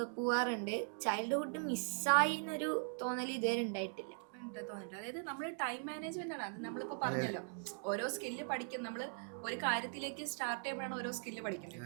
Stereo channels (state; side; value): silent; left; 51 dB below the other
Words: പോവാറുണ്ട്. ചൈൽഡ്ഹുഡ് മിസ്സായി എന്നൊരു തോന്നൽ ഇതുവരെ ഉണ്ടായിട്ടില്ല. തോന്നിട്ട് അതായത് നമ്മൾ ടൈം മാനേജ്മെന്റ് ആണ്. അത് നമ്മളിപ്പോ പറഞ്ഞല്ലോ, ഓരോ സ്കില്ല് പഠിക്കും. നമ്മൾ ഒരു കാര്യത്തിലേക്ക് സ്റ്റാർട്ട് ചെയ്യുമ്പോഴാണ് ഓരോ സ്കില്ല് പഠിക്കുന്നത്.